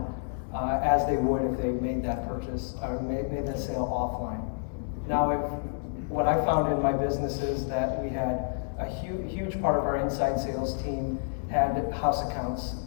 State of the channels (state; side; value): silent; right; digital silence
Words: as they would if they made that purchase or made that sale offline. Now, what I found in my business is that we had a huge part of our inside sales team had house accounts